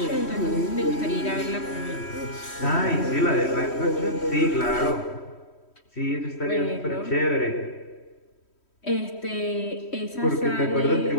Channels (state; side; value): late; right; 3.1 ms